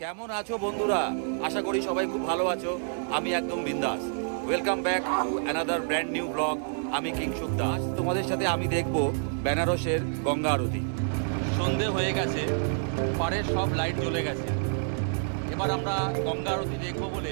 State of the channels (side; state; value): left; silent; 59 dB below the other